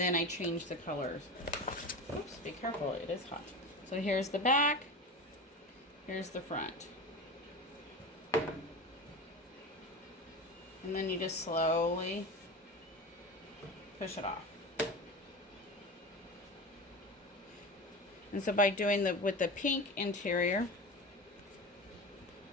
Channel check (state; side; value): normal; both; correlation 0.28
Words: I changed the colors. Oops, be careful, it is hot. So here's the back, here's the front. And then you just slowly push it off. And so by doing with the pink interior,